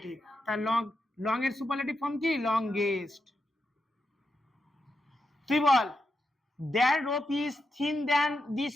তার লং, লং এর সুপারলেটিভ ফর্ম কি? লংগেস্ট। তুই বল there rope is thin than this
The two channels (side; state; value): both; normal; correlation 0.86